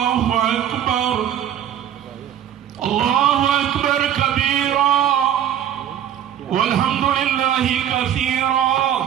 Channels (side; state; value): left; quieter; 10.2 dB